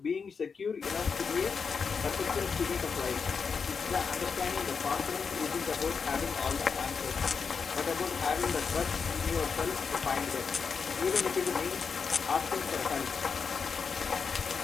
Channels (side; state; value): right; quieter; 5.6 dB